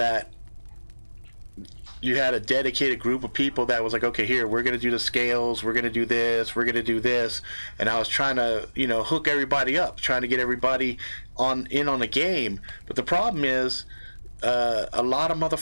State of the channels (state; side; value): inverted; both; correlation -1.00